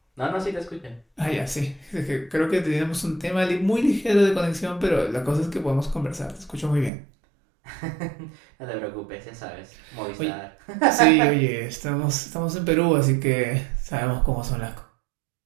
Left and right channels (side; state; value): left; drops out; at 6.9 s